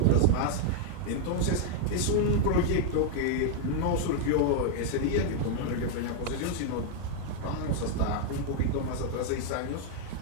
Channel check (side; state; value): both; different; correlation 0.00